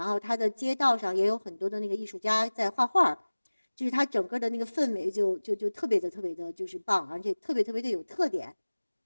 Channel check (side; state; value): both; inverted; correlation -1.00